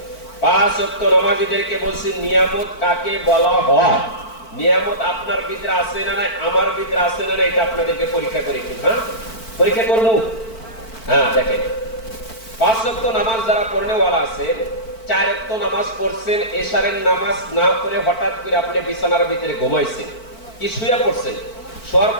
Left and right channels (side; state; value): right; late; 4.5 ms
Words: 5 ওয়াক্ত নামাজীদেরকে বলছি নিয়ামত কাকে বলা হয়। নিয়ামত আপনার ভিতরে আছে না নাই, আমার ভিতরে আছে না নাই, এটা আপনাদেরকে পরীক্ষা করে কি, হ্যাঁ পরীক্ষা করবো। হ্যাঁ দেখেন, 5 ওয়াক্ত নামাজ যারা পড়নেওয়ালা আছেন, 4 ওয়াক্ত নামাজ পড়ছেন, এশারের নামাজ না পড়ে হঠাৎ করে আপনি বিছানার ভিতরে ঘুমাইছেন, কি শুয়ে পড়ছেন, শোয়ার